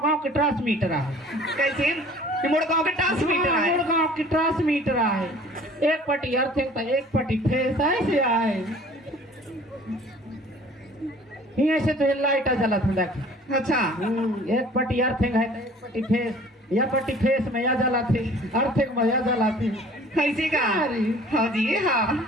गांव के ट्रांसमीटर है कैसे ये मोड़ गांव के ट्रांसमीटर है गांव की ट्रांसमीटर है एक पट्टी अर्थिंग था एक पट्टी फेस ऐसे आए यहाँ से तो लाइट जला था देख अच्छा एक पट्टी अर्थिंग है एक पट्टी फेस या पट्टी फेस में या जला थी अर्थिंग में या जला थी कैसे का अरे। हाँ जी हाँ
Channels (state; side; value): normal; both; correlation 0.49